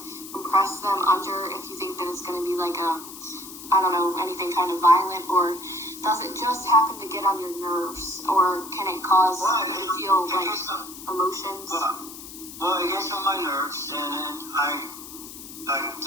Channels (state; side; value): noise; left; hiss, 13 dB below the sound